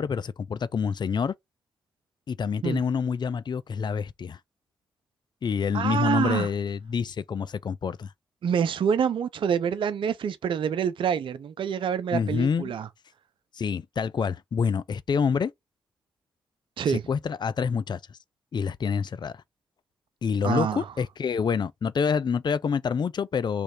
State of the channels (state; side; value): normal; both; correlation 0.65